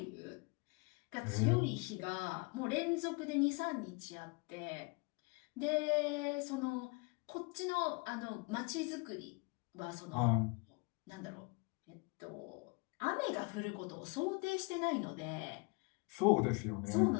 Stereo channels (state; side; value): quieter; right; 30.5 dB